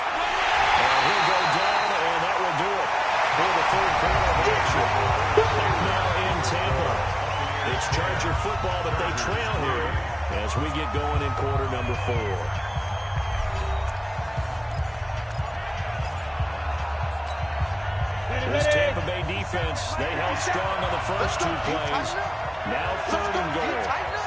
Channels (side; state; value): both; identical; correlation 1.00